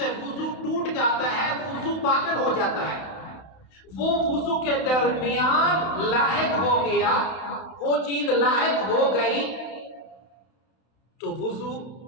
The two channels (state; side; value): late; right; 31 ms